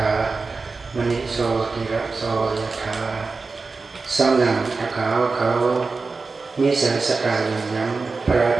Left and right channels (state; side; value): quieter; left; 4.2 dB